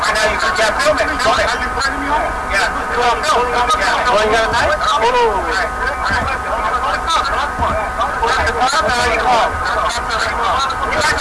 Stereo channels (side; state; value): both; identical; correlation 1.00